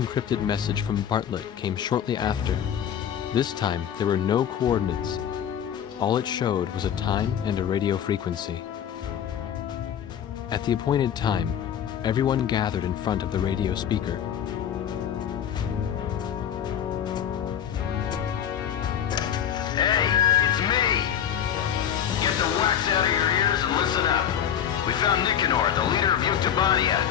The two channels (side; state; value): right; quieter; 9.2 dB